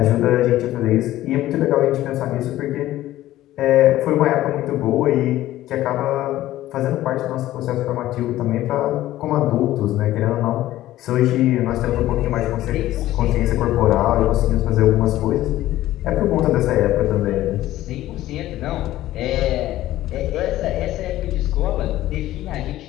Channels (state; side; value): quieter; right; 14.8 dB